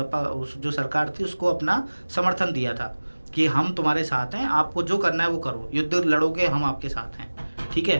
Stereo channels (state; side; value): inverted; both; correlation -1.00